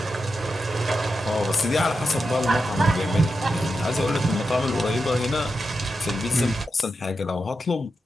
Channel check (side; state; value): both; normal; correlation 0.88